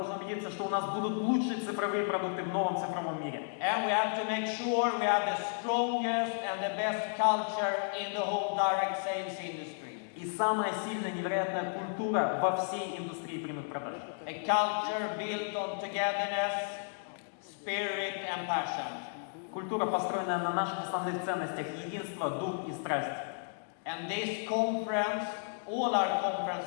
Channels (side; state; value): right; silent; digital silence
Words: убедиться, что у нас будут лучшие цифровые продукты в новом цифровом мире. And we have to make sure we have the strongest and the best culture in the whole direct sales industry. И самая сильная, невероятная культура во всей индустрии прямых продаж. A culture built on togetherness, spirit and passion. Культура, построенная на наших основных ценностях: единство, дух и страсть. And this conference, all our